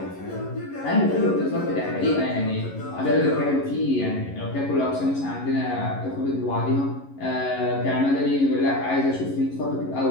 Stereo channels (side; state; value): right; late; 11 ms